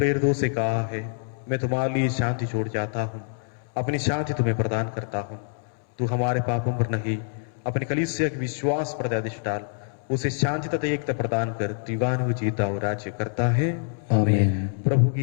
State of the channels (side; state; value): right; silent; 61 dB below the other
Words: से कहा है, मैं तुम्हारे लिए शांति छोड़ जाता हूँ, अपनी शांति तुम्हें प्रदान करता हूँ। तू हमारे पापों पर नहीं, अपने कलीसिया के विश्वास पर दृष्टि डाल, उसे शांति तथा एकता प्रदान कर युगानुयुग जीता और राज्य करता है। आमीन। प्रभु